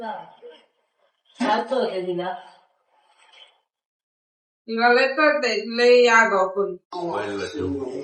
तिला. तिला लय करते लय आगाव पण.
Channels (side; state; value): both; identical; correlation 1.00